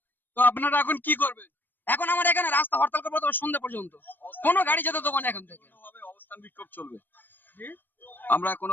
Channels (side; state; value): right; late; 0.093 ms